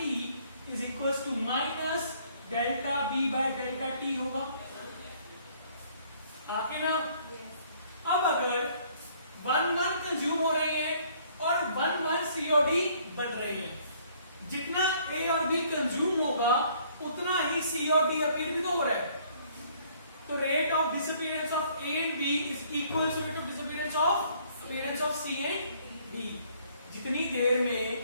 is equal to minus delta B by delta T होगा, आके ना। अब अगर 1 कंज्यूम हो रहे हैं और 1 सीओडी बन रहे हैं, जितना ए और बी कंज्यूम होगा उतना ही सी और डी अपीयर भी तो हो रहा है। तो rate of disappearance of A and B is equal to rate of disappearance of appearance of C and D. जितनी देर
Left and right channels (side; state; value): both; inverted; correlation -0.61